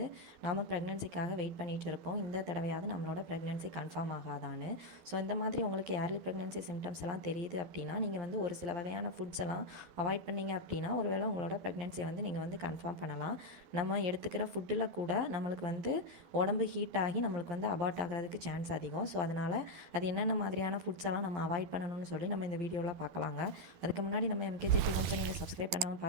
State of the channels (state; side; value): late; left; 12 ms